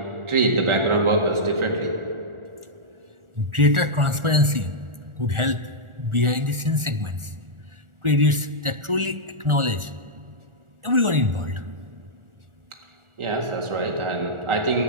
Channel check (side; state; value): left; late; 1.4 ms